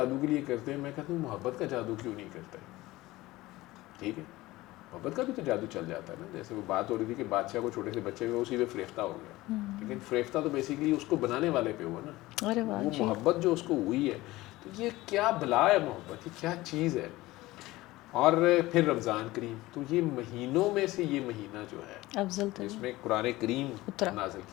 کے لیے کرتے ہیں. میں کہتا ہوں محبت کا جادو کیوں نہیں کرتے؟ ٹھیک ہے، محبت کا بھی تو جادو چل جاتا ہے نا. جیسے وہ بات ہو رہی تھی کہ بادشاہ کو چھوٹے سے بچے ہوئے اسی پہ فریفتہ ہو گیا، لیکن فریفتہ تو بیسیکلی اس کو بنانے والے پہ ہوا نا. وہ محبت جو اس کو ہوئی ہے، تو یہ کیا بلا ہے محبت، یہ کیا چیز ہے. اور پھر رمضان کریم، تو یہ مہینوں میں سے یہ مہینہ جو ہے افضل جس میں قرآن کریم نازل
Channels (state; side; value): quieter; right; 18.6 dB